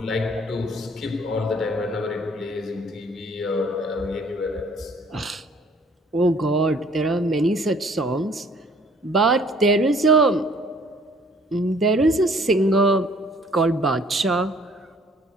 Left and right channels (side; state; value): both; normal; correlation 0.58